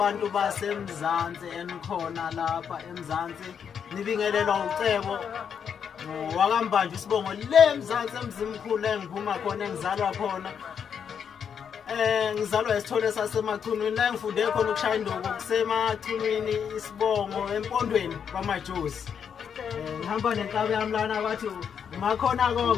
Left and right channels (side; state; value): right; quieter; 7.5 dB